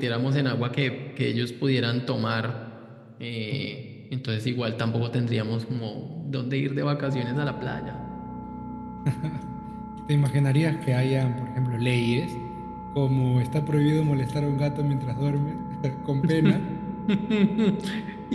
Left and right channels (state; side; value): identical; both; correlation 1.00